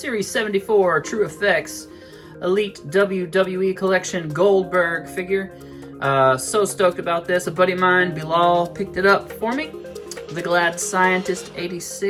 74 True Effects Elite WWE Collection Goldberg figure. So stoked about this. A buddy of mine, Bilal, picked it up for me. The Glad Scientist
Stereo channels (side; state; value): both; identical; correlation 1.00